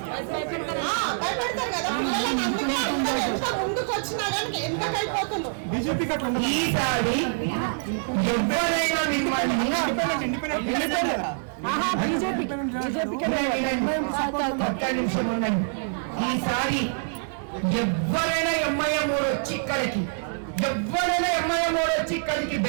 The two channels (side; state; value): left; silent; 59 dB below the other